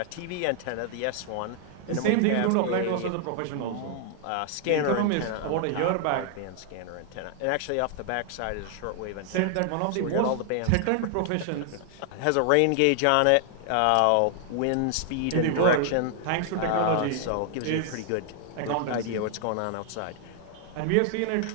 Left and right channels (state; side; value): different; both; correlation 0.00